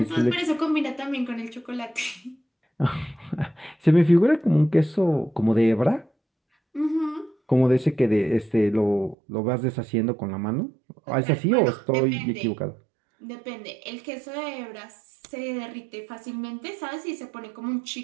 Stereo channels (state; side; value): drops out; left; at 9.2 s